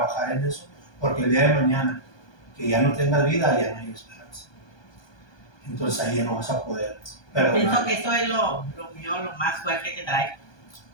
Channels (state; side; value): late; right; 1.2 ms